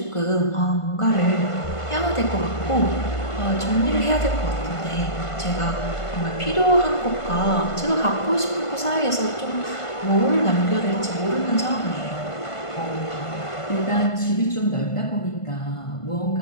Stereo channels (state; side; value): late; right; 1.5 ms